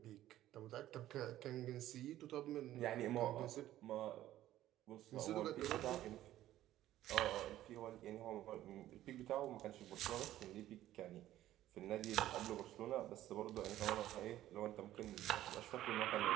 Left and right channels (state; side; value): quieter; left; 13.7 dB